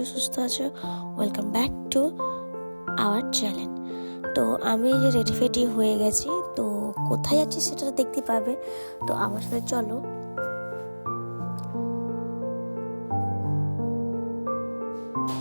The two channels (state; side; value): inverted; both; correlation -1.00